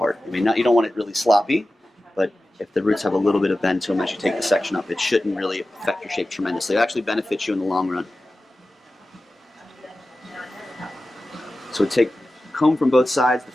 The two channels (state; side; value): normal; both; correlation 0.95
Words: I mean, you don't want it really sloppy, but if the roots have a little bit of bend to them as you take the section up, it shouldn't really affect your shape tremendously. It actually benefits you in the long run. So take comb from both sides. The